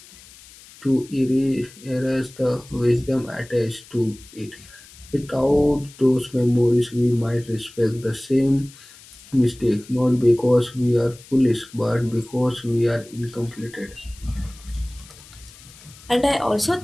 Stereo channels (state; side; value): noise; left; hiss, 22 dB below the sound